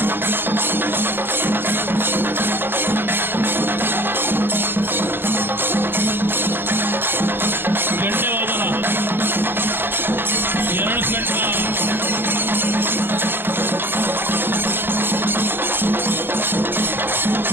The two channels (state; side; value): late; left; 0.10 ms